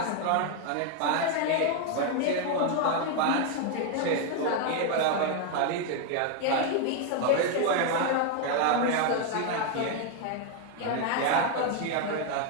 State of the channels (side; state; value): both; different; correlation 0.01